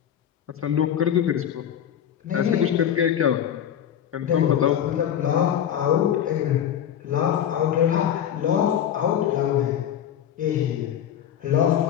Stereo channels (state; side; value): quieter; right; 9.8 dB